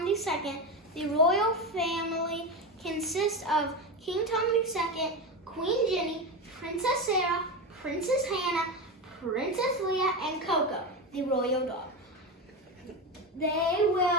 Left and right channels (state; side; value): normal; both; correlation 0.19